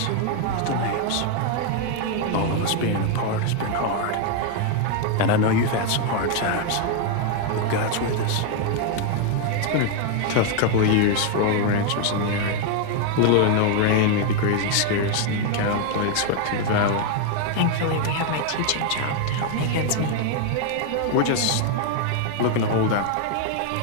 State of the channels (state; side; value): different; both; correlation 0.00